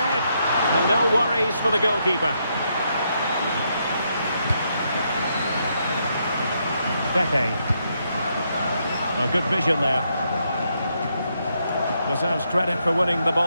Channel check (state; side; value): inverted; both; correlation -0.78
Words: And no worries for the goalkeeper. Pepe. Oh, good vision there. Deserves credit for winning the